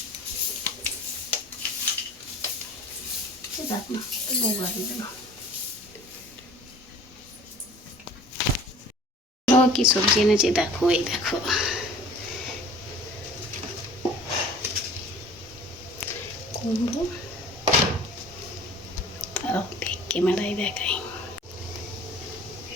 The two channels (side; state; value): both; normal; correlation 0.46